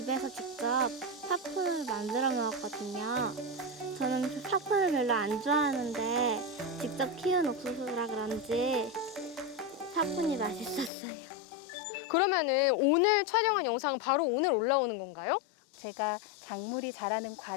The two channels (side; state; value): right; drops out; at 10.9 s